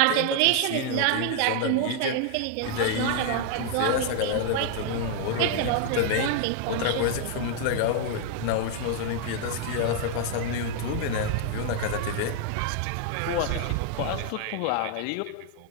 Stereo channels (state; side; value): different; both; correlation 0.00